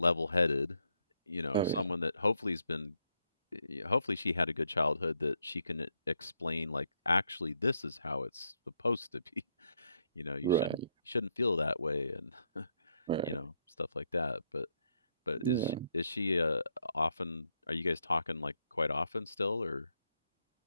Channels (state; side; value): inverted; both; correlation -0.76